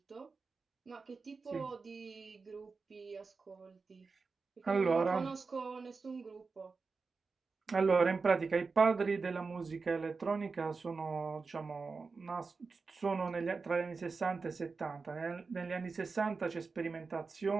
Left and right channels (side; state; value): left; quieter; 4.5 dB